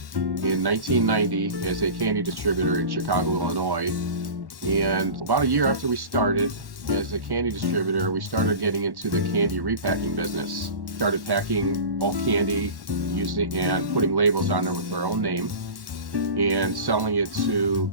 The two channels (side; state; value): left; late; 1.1 ms